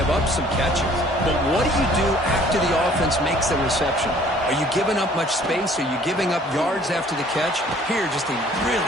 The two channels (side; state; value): both; normal; correlation 0.56